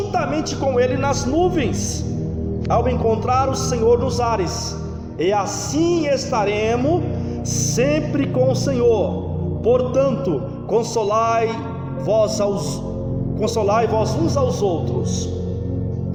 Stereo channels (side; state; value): both; identical; correlation 1.00